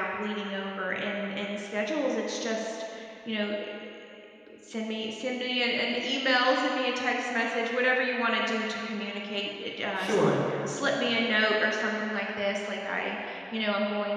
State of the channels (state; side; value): identical; both; correlation 1.00